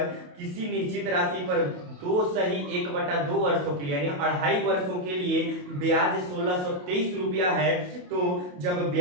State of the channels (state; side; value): late; left; 28 ms